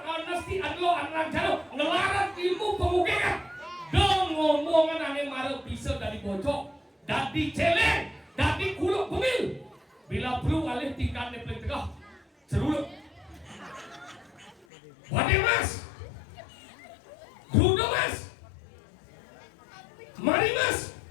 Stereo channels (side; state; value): right; drops out; at 14.7 s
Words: anesti adlo anang jalo ngelarang ilmu pemukiman. Ngomongan ane marah bisa dari bojok, dari celeng, dari kuluk pemil. Bila perlu alih tingkat neplek tegah, seruluk. Wade mas, Dudo mas, Mari mas,